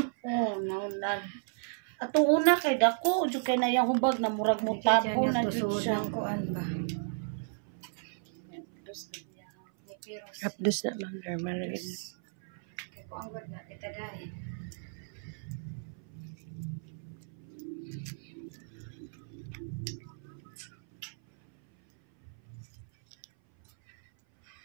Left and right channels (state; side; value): silent; left; 55 dB below the other